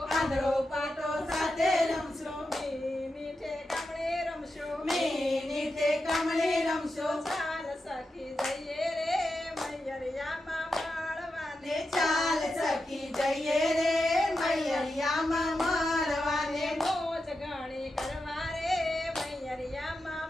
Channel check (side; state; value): both; normal; correlation 0.89